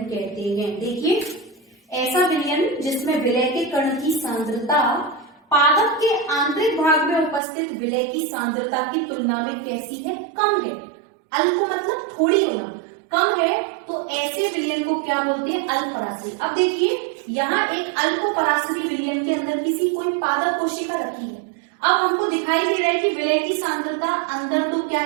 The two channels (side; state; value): left; drops out; at 7.4 s